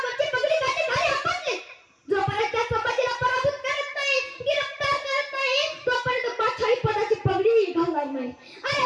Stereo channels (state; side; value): identical; both; correlation 1.00